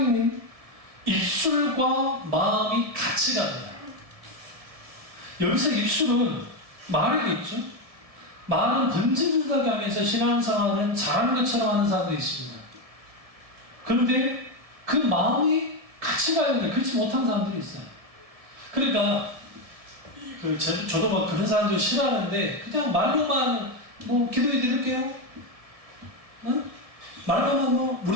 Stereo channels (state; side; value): late; left; 1.7 ms